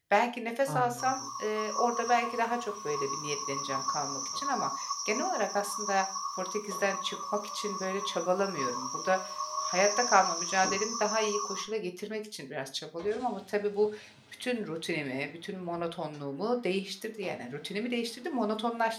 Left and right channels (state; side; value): identical; both; correlation 1.00